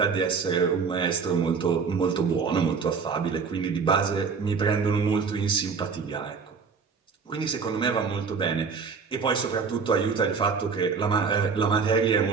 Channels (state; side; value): quieter; left; 5.4 dB